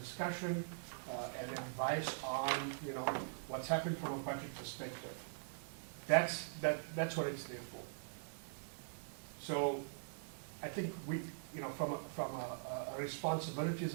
and advice on, what's happened from a budget perspective. That's what it's there for. So I think we, from a responsibilities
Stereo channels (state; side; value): silent; left; digital silence